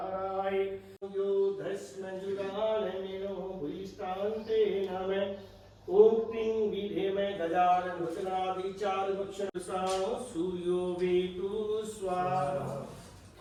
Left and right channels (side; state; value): both; identical; correlation 1.00